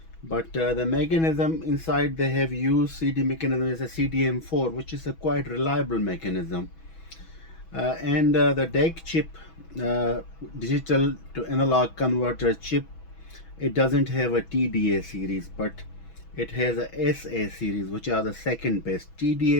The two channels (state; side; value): late; right; 6.1 ms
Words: but the mechanism inside they have used CD mechanism is a CDM-4, which is a quite reliable mechanism. And the DAC chip, digital to analog converter chip, it doesn't have a TDA series, but it has a SA series, which are the second best.